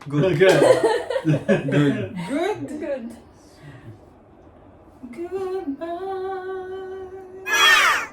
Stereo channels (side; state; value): both; identical; correlation 1.00